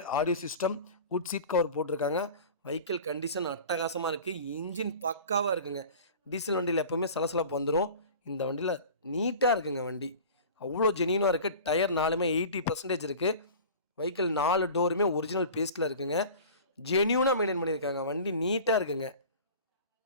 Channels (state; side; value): inverted; both; correlation -0.39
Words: audio system, good seat cover போட்டிருக்காங்க. வெஹிக்கிள் கண்டிஷன் அட்டகாசமாக இருக்குது. இன்ஜின் பக்காவாக இருக்குங்க. டீசல் வண்டியில் எப்போவுமே சலசலப்பு வந்துடும். இந்த வண்டியில் நீட்டாக இருக்குங்க. வண்டி அவ்வளோ ஜென்யூனாக இருக்குது. டயர் 4மே 80% இருக்குது. வெஹிக்கிள் 4 டோருமே ஒரிஜினல் பேஸ்ட்டில் இருக்குங்க. ஜென்யூனாக மெயின்டைன் பண்ணியிருக்காங்க. வண்டி நீட்டாக இருக்குங்க.